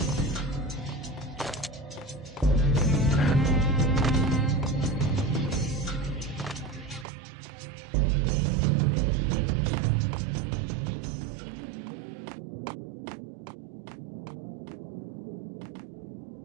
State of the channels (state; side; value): drops out; left; at 7.1 s